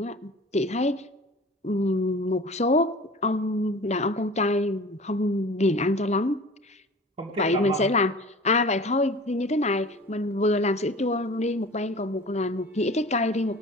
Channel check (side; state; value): both; normal; correlation 0.41